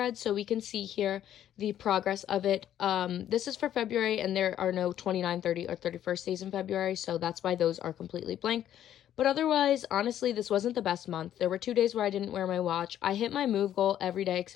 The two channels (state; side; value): quieter; right; 11.1 dB